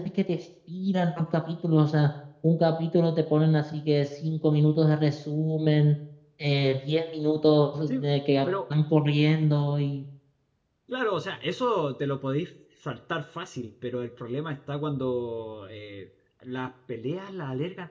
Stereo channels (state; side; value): identical; both; correlation 1.00